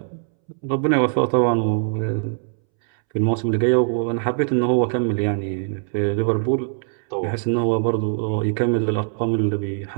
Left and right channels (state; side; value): silent; left; 64 dB below the other